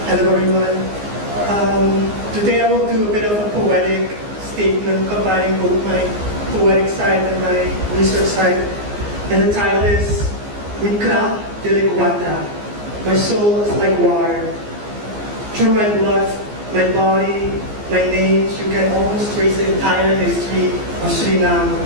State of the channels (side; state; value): left; late; 14 ms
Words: Hello, everyone. Today I will do a bit of a poetic statement combining both my poetic side and my research side. And the title is Mikra Deleguata. My soul is like water. Through my blood, my body, my names, you can almost trace the entire history of Suriname.